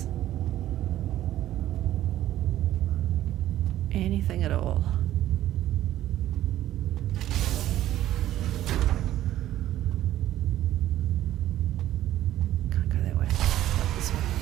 Anything at all? Can't go that way. Not this way.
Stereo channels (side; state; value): left; quieter; 13.3 dB